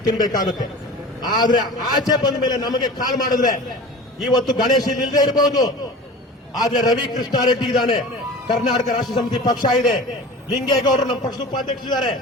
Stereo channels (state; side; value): normal; both; correlation 0.37